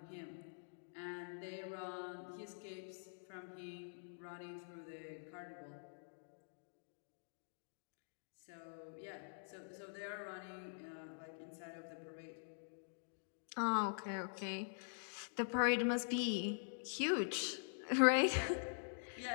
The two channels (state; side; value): silent; right; digital silence